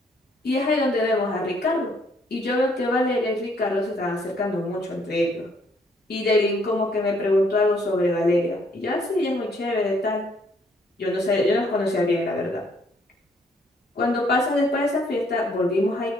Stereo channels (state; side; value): normal; both; correlation 0.66